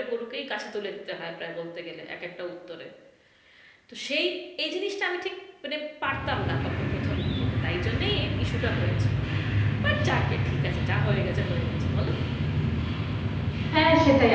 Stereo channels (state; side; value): identical; both; correlation 1.00